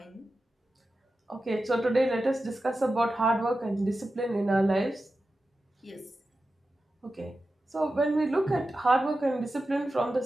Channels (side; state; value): both; normal; correlation 0.92